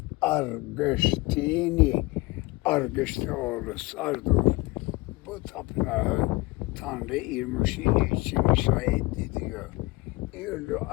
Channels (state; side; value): quieter; right; 22.6 dB